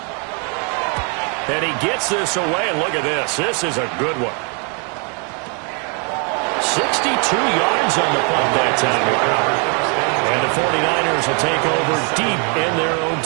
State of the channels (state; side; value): quieter; left; 36.9 dB